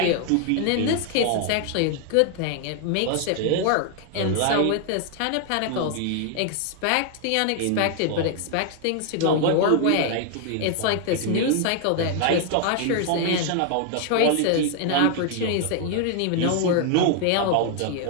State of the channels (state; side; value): different; both; correlation 0.00